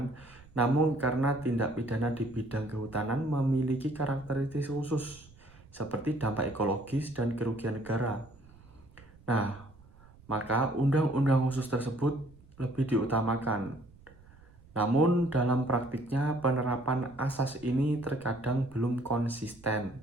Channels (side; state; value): right; noise; rumble, 24 dB below the sound